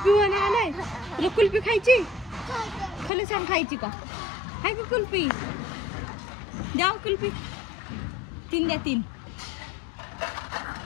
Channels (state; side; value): drops out; right; at 3.1 s